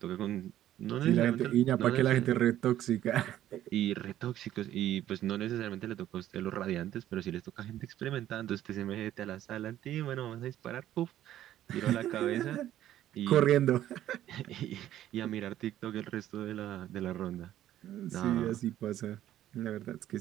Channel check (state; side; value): quieter; left; 12.5 dB